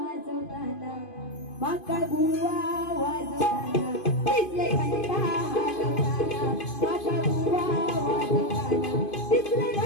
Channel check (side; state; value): right; late; 2.5 ms